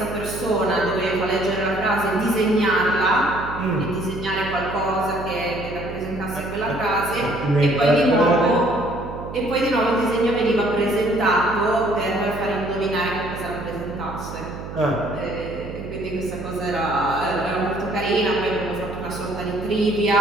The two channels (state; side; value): noise; right; hum, 10 dB below the sound